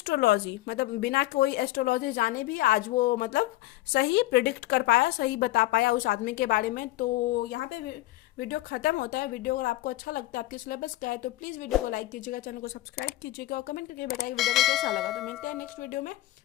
मतलब बिना कोई एस्ट्रोलॉजी जाने भी आज वो मतलब सही प्रिडिक्ट कर पाया, सही बता पाया उस आदमी के बारे में। तो यहाँ पे वीडियो खत्म होता है। वीडियो अगर आपको अच्छा लगता है, आपके सिलेबस का है, तो प्लीज़ वीडियो को लाइक कीजिएगा, चैनल को सब्सक्राइब कीजिएगा और कमेंट करके बताइए वीडियो को कैसा लगा। तो मिलते हैं नेक्स्ट वीडियो में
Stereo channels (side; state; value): right; quieter; 17.0 dB